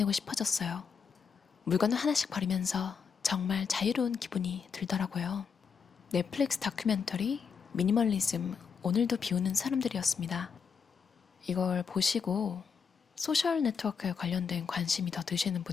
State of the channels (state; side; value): quieter; right; 6.3 dB